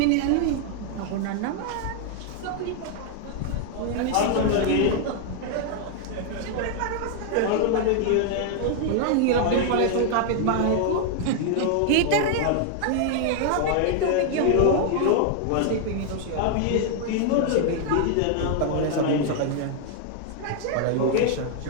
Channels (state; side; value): different; both; correlation 0.00